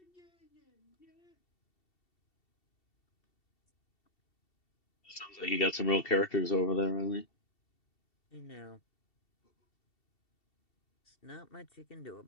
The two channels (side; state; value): right; late; 2.7 ms